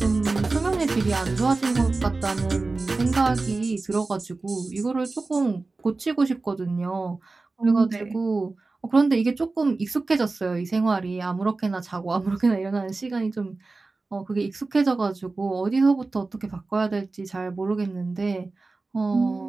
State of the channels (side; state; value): left; quieter; 3.5 dB